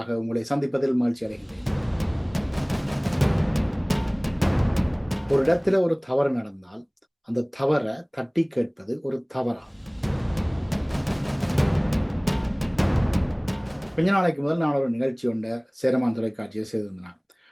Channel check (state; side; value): identical; both; correlation 1.00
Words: உங்களை சந்திப்பதில் மகிழ்ச்சி அடைகின்றேன். ஒரு இடத்துல ஒரு தவறு நடந்தால் அந்த தவறை தட்டி கேட்பது ஒரு தவறா? கொஞ்ச நாளைக்கு முதல் நான் ஒரு நிகழ்ச்சி ஒன்றை சேரமான் தொலைக்காட்சியை செய்திருந்தேன்.